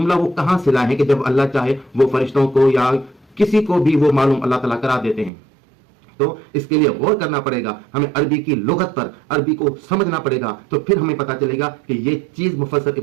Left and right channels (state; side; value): drops out; left; at 5.3 s